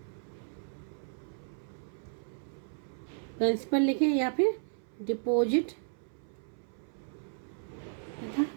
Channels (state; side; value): silent; left; 55 dB below the other